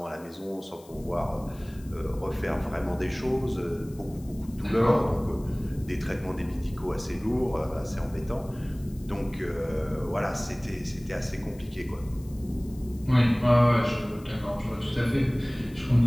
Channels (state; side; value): noise; left; hiss, 24 dB below the sound